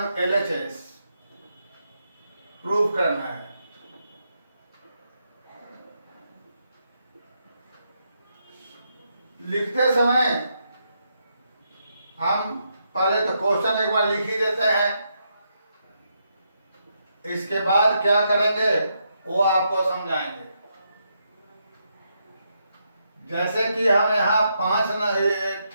LHS प्रूव करना है। लिखते समय हम पहले तो क्वेश्चन एक बार लिख ही देते हैं, इसके बाद क्या करेंगे वो आपको समझाएंगे। जैसे कि हम यहाँ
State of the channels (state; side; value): inverted; both; correlation -0.80